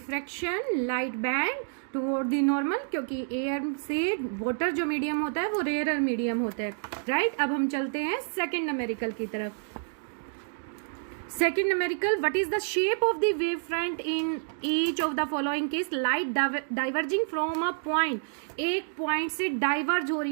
light band toward the normal, क्योंकि एयर से वाटर जो मीडियम होता है वो रेयरर मीडियम होता है। राइट, अब हम चलते हैं सेकेंड न्यूमेरिकल की तरफ। Second numerical, what is the shape of the wavefront in each of the following case? Light diverging from a point, एक पॉइंट से डाइवर्ज हो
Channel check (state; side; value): silent; left; digital silence